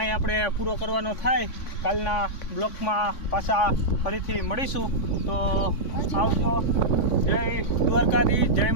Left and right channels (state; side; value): late; right; 3.5 ms